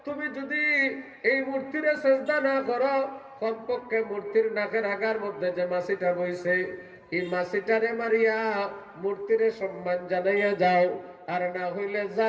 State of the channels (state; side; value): identical; both; correlation 1.00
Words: তুমি যদি এই মূর্তিরে সেজদা না করো, কমপক্ষে মূর্তির নাকের আগার মধ্যে যে মাছিটা বইছে এই মাছিটারে মারিয়া মূর্তিরে সম্মান জানাইয়া যাও, আর না হইলে